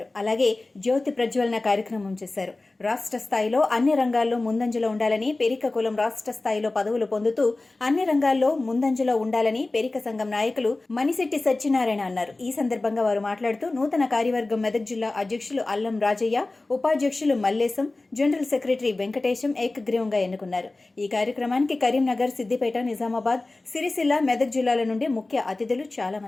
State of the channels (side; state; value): right; quieter; 3.1 dB